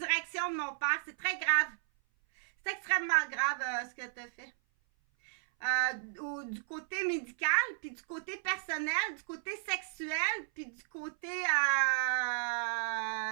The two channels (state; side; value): silent; left; 55 dB below the other